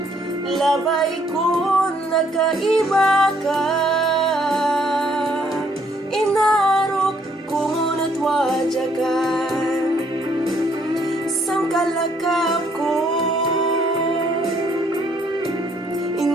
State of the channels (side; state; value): both; normal; correlation 0.67